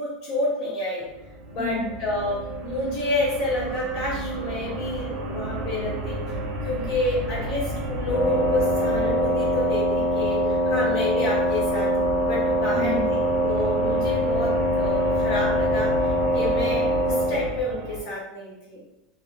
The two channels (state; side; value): normal; both; correlation 0.38